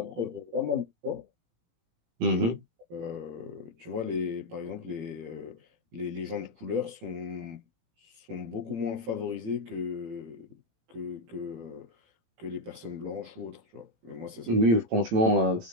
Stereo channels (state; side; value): late; left; 18 ms